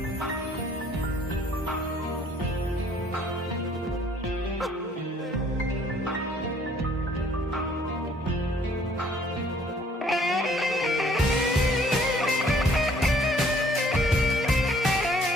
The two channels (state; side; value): normal; both; correlation 0.60